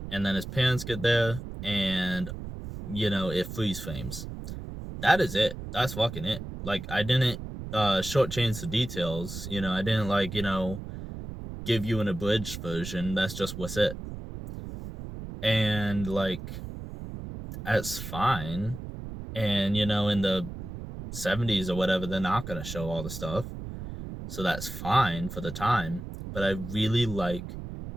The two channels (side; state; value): right; noise; rumble, 9 dB below the sound